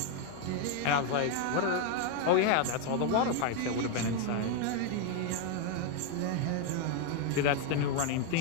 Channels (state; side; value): different; both; correlation 0.01